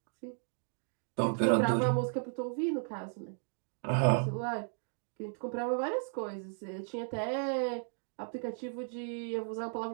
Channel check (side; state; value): left; silent; digital silence